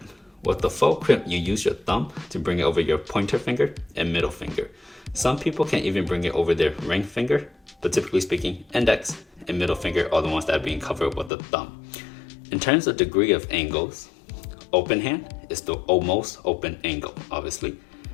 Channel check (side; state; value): right; drops out; at 11.3 s